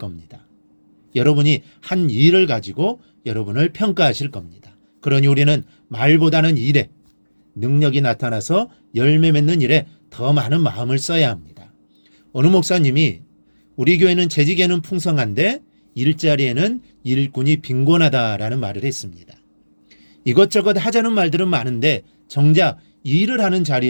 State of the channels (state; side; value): inverted; both; correlation -1.00